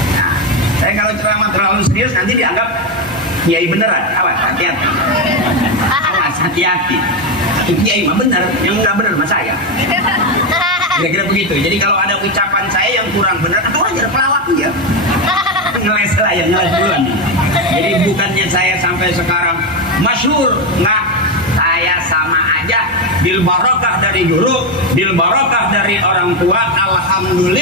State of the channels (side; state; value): both; normal; correlation 0.10